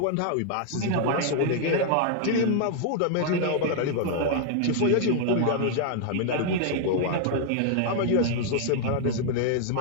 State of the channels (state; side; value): different; both; correlation 0.00